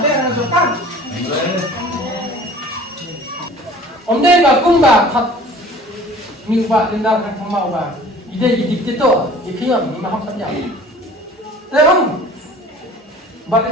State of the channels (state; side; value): normal; both; correlation 0.46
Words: ada terjebak. Om dia bakum bah, ni ubah tindakan kamu ubah ide itu ikhiyam ni maham saja tapi ubah